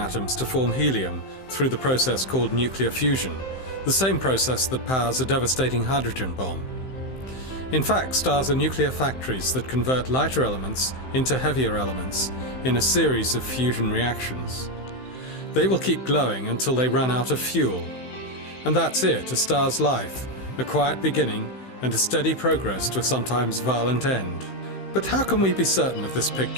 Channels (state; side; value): late; right; 15 ms